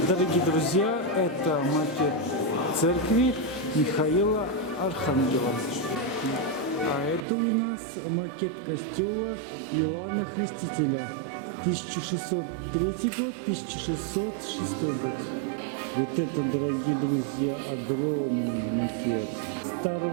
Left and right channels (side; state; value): left; drops out; at 7.2 s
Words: Дорогие друзья, это макет церкви Михаила Архангела. А это у нас макет костела Иоанна Крестителя. 1603 год, 1606 год. Вот это, дорогие друзья, огромный макет